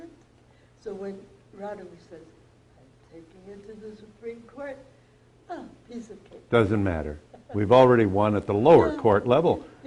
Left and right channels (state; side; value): identical; both; correlation 1.00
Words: So when Roudabush says, I'm taking it to the Supreme Court, piece of cake. Doesn't matter. We've already won at the lower Yeah. court level.